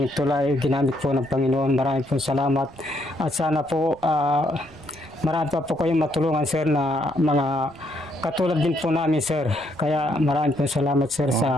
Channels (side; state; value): right; noise; rumble, 25 dB below the sound